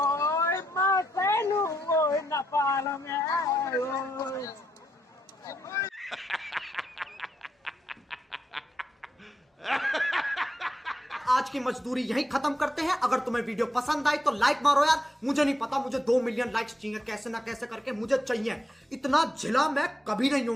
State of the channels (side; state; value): both; normal; correlation 0.82